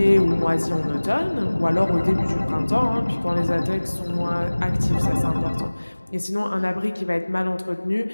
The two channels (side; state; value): both; inverted; correlation -1.00